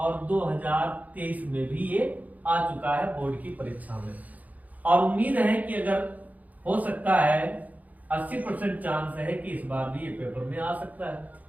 2023 में भी ये आ चुका है बोर्ड की परीक्षा में। और उम्मीद है कि अगर हो सकता है 80% चांस है कि इस बार भी ये पेपर में आ सकता है।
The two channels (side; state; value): left; late; 0.077 ms